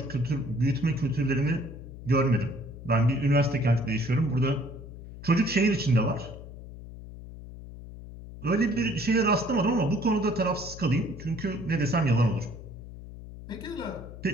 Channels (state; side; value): noise; left; hum, 14 dB below the sound